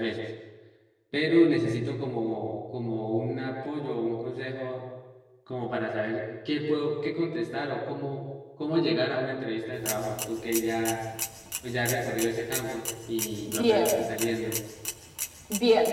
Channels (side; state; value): both; identical; correlation 1.00